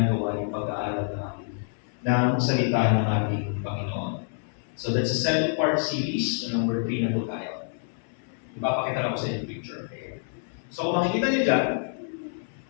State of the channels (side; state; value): right; silent; 60 dB below the other